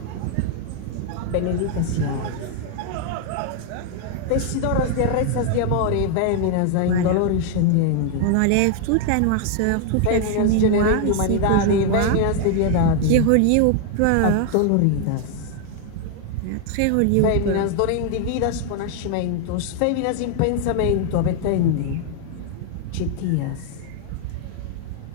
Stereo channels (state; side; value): different; both; correlation 0.00